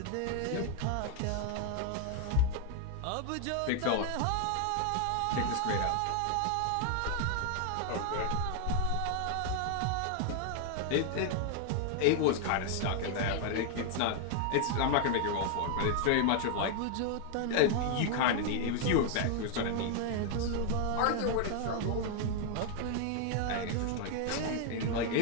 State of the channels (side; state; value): both; different; correlation 0.00